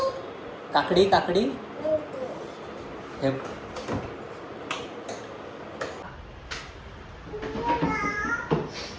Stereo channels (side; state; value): both; identical; correlation 1.00